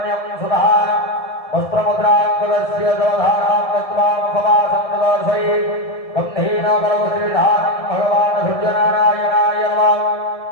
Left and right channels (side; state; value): right; late; 1.7 ms